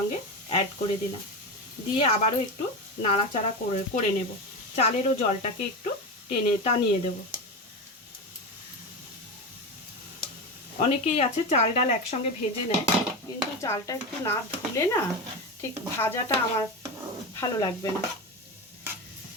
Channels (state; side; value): normal; both; correlation 0.20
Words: অ্যাড করে দিলাম। দিয়ে আবারও একটু নাড়াচাড়া করে নেব। চালেরও জলটাকে একটু টানিয়ে দেব। অনেকেই আছে চাল ডাল একসঙ্গে ভেজে নেয়, কিন্তু চালটা একটু না ধুলে না ঠিক ভাজাটা আমার ভালো লাগবে না।